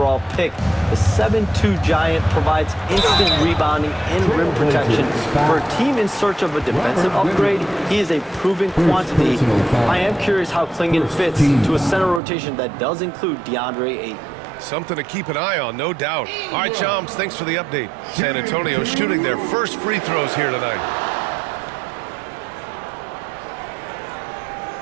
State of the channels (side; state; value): left; drops out; at 12.2 s